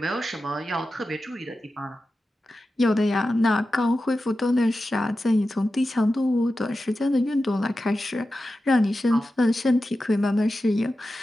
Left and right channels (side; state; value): both; normal; correlation 0.92